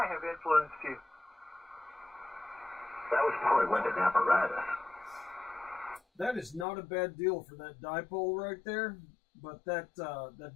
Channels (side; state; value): right; drops out; at 6.7 s